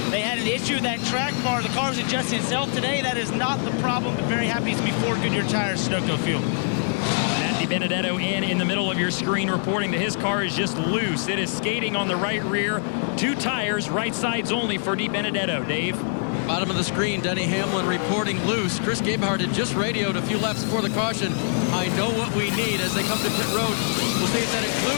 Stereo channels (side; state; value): right; silent; digital silence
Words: they had an issue with that track bar. The car was adjusting itself. Today that is not the problem, but very happy to be 4 Goodyear tires, Sunoco fuel. Matt DiBenedetto in the middle of your screen reporting that his car is just loose. It is skating on the right rear. 2 tires, right sides only for DiBenedetto. Dave? Bottom of the screen, Denny Hamlin reporting loose. Chris Gabehart had just radioed a few laps before the caution. I know what we need as they come to pit road. We'll see if that